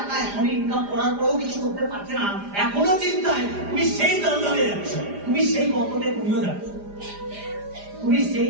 এখন ইনকাম করার পরেও কিছু করতে পারছে না, এখনো চিন্তায় তুমি সেই দলদলে যাচ্ছ, তুমি সেই গর্তে তুমিও যাচ্ছ, তুমি সেই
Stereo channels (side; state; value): left; late; 4.9 ms